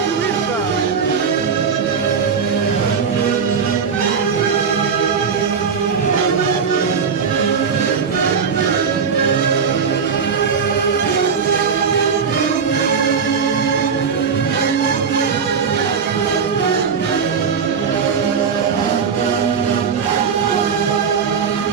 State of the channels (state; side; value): quieter; left; 6.2 dB